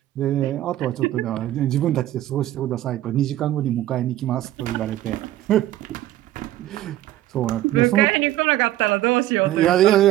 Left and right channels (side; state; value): left; quieter; 14.2 dB